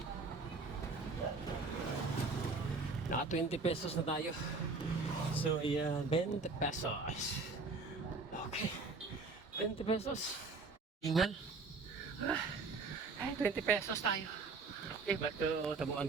Naka 20 pesos na tayo. So, ayan, 20 pesos. Okay. 20 pesos. Ingal. Ay, 20 pesos tayo. Okay, ba't tabuan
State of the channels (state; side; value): quieter; left; 4.1 dB